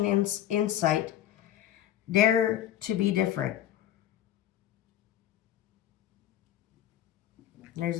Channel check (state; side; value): quieter; right; 11.7 dB